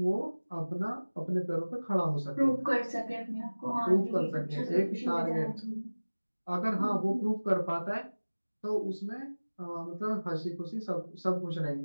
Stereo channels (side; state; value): both; inverted; correlation -1.00